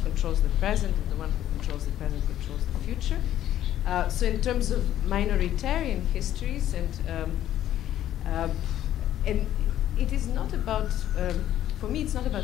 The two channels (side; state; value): right; quieter; 12.1 dB